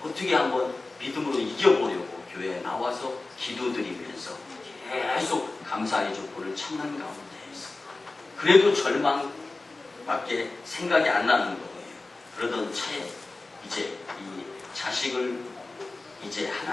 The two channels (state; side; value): quieter; right; 3.3 dB